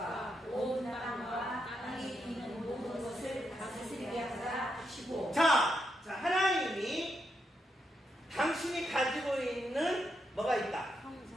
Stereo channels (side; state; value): both; normal; correlation 0.82